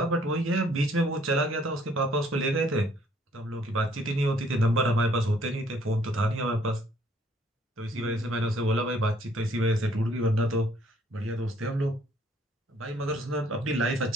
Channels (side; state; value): both; normal; correlation 0.63